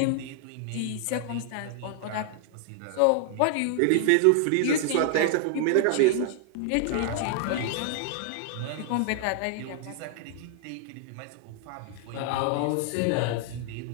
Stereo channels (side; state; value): both; different; correlation 0.00